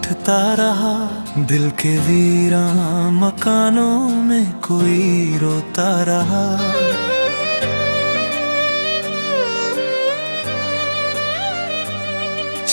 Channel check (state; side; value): inverted; both; correlation -1.00